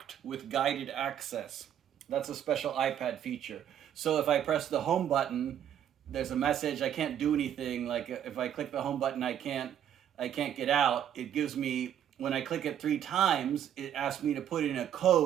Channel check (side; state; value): left; quieter; 9.9 dB